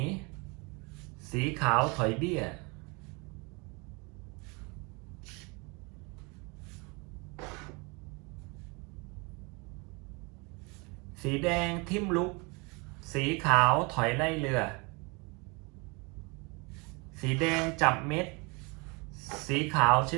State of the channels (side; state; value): left; quieter; 29.2 dB